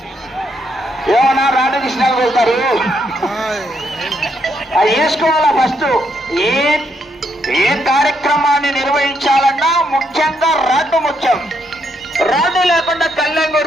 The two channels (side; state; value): both; normal; correlation 0.76